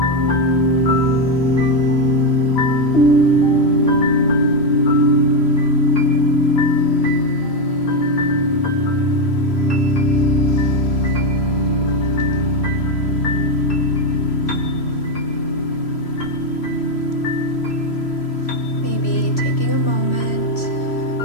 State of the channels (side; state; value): right; late; 3.1 ms